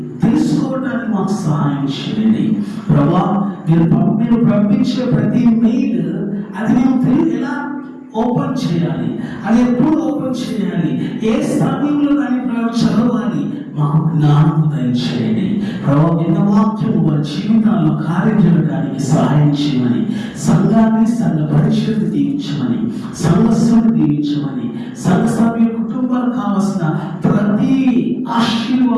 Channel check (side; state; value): both; identical; correlation 1.00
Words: తెలుసుకోవడానికి మాకు సహాయం చేయండి ప్రభా. మీరు పంపించే ప్రతి మెయిల్ అది మేము ఎలా ఓపెన్ చేయాలి, అది ఎప్పుడు ఓపెన్ చేయాలి, ఏ సమయంలో దాన్ని చదవాలి, మాకు జ్ఞానం దయచేయండి ప్రభావ. విన్న వాక్యము వారి జీవితాల్లో కార్యం చేయడానికి సహాయం చేయమని, సంఘాన్ని, సంఘ పరిచయాన్ని దీవించమని, సంఘస్సును దీవించమని, సంఘ సభ్యుల కుటుంబాలకు కావలసిన ప్రతి